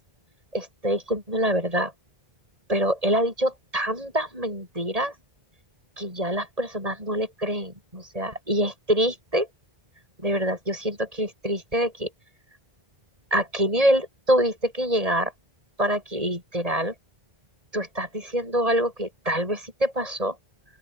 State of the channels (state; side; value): late; left; 1.8 ms